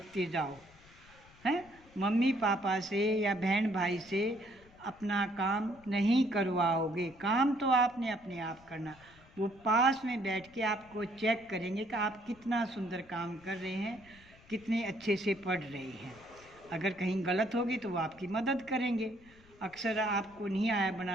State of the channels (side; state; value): left; noise; rumble, 25 dB below the sound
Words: जाओ, हैं। मम्मी पापा से या बहन भाई से अपना काम नहीं करवाओगे। काम तो आपने अपने आप करना। वो पास में बैठ के आपको चेक करेंगे कि आप कितना सुंदर काम कर रहे हैं, कितने अच्छे से पढ़ रहे हैं। अगर कहीं गलत होगी तो वो आपकी मदद करेंगे। अक्सर आपको नहीं आया